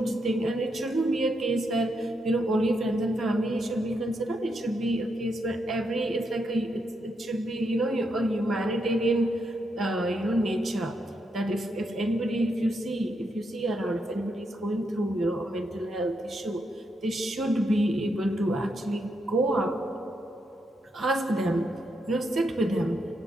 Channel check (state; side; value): normal; both; correlation 0.80